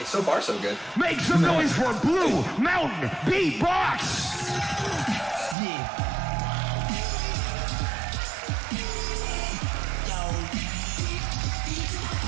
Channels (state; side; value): drops out; left; at 5.6 s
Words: so far so good. Make some noise for Blue Mountain Beatbox! Yeah.